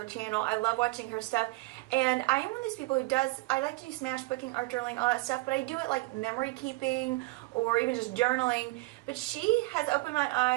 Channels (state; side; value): quieter; left; 22.8 dB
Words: channel. I love watching her stuff, and I am one of these people who I like to do smash booking, art journaling, all that stuff, but I do it like memory keeping or even just journaling. But she has opened my